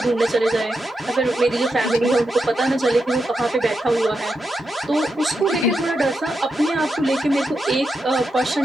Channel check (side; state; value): both; normal; correlation 0.86